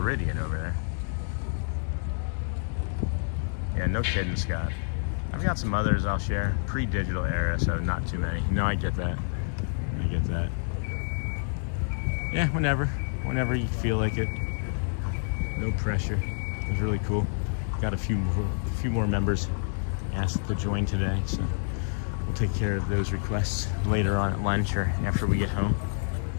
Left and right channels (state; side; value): silent; right; digital silence